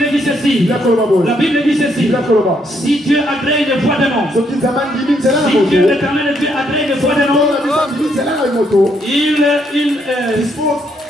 dit ceci. La Bible dit ceci. Si Dieu agrée une voix de nom, si Dieu l'éternel Dieu agrée une voix de nom,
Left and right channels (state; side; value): normal; both; correlation 0.73